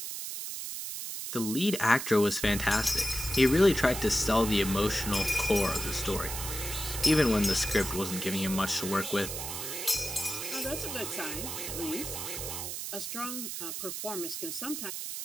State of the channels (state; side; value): noise; right; hiss, 6 dB below the sound